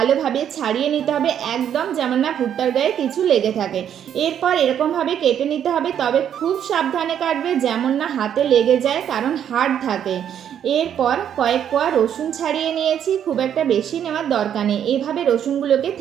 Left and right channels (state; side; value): quieter; left; 9.3 dB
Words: ছাড়িয়ে নিতে হবে, একদম যেমন না ভুট্টার গায়ে কিছু লেগে থাকে। এরপর এরকমভাবে কেটে নিতে হবে, তবে খুব সাবধানে কাটবে যেমন না হাতে লেগে যায়, কারণ হাড় থাকে। এরপর কয়েক কোয়া রসুন ছাড়িয়ে নিয়েছি, খুব একটা বেশি নেওয়ার দরকার নেই। এইভাবে রসুনগুলোকে